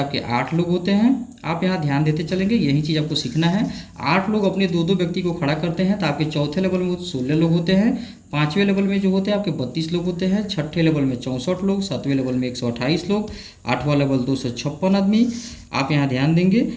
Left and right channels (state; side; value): identical; both; correlation 1.00